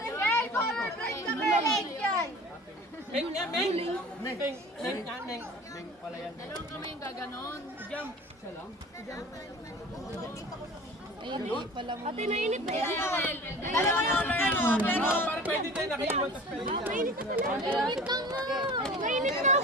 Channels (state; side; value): normal; both; correlation 0.41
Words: Meng yan, Meng! Meng pala yan. Dalawang kami yung gaganon. Jump! Siya lang? Ay, hindi pala mo. Ate, nainit na yan. Dalawa yung ano, pero... Parang pwede tayo nakaiwan tapos pwede tayo. Mainit na pala. Mainit na nga. Mainit na,